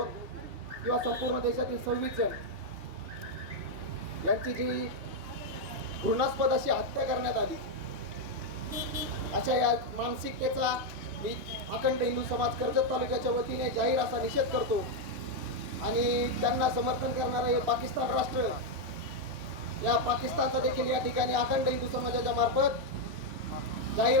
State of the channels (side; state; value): left; late; 3.2 ms